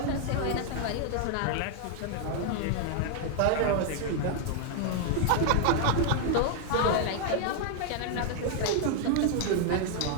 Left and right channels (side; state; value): both; different; correlation 0.00